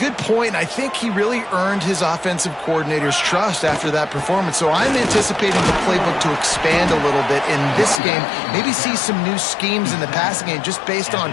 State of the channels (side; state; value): right; drops out; at 8.0 s